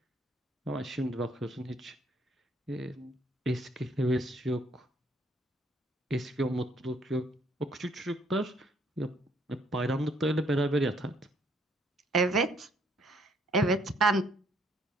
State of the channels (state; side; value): normal; both; correlation 0.66